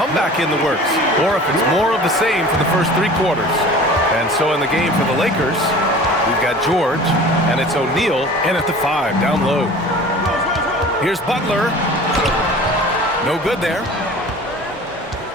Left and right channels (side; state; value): both; normal; correlation 0.42